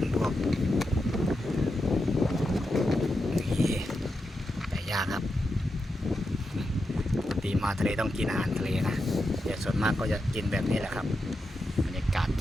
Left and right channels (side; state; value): both; normal; correlation 0.87